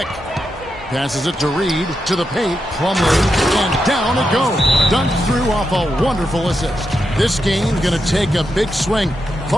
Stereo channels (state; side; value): normal; both; correlation 0.85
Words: Passes it to Reed. To the paint. Plumlee. And down it goes. Dunked through off a wonderful assist. This game's going to take a big swing.